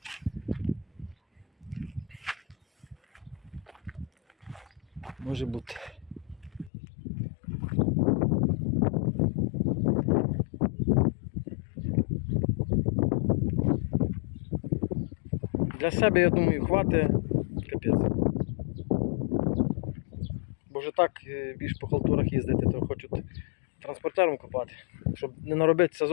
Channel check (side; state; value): right; drops out; at 6.7 s